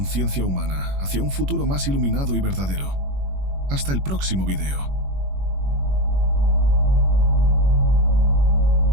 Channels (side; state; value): left; late; 21 ms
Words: humana hacia un futuro más iluminado y verdadero. Hasta el próximo video.